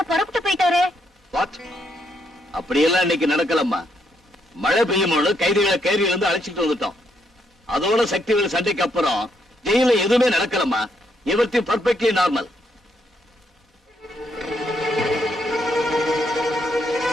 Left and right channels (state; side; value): normal; both; correlation 0.76